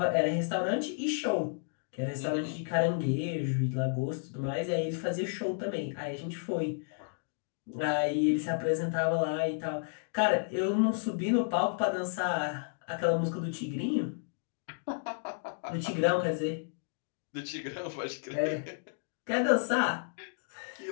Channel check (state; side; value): silent; right; digital silence